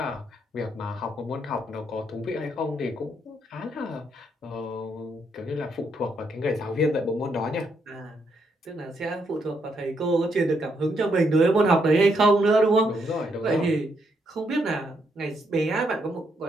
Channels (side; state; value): both; normal; correlation 0.76